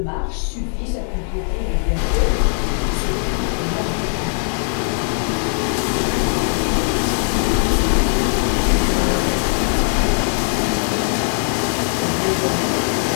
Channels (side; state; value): right; silent; 59 dB below the other